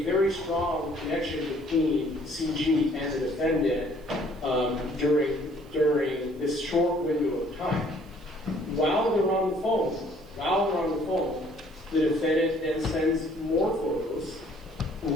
very strong connection between CG and the defendant during this short window of time. While they're on the phone, the defendant then sends more photos.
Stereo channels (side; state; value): right; noise; hiss, 29 dB below the sound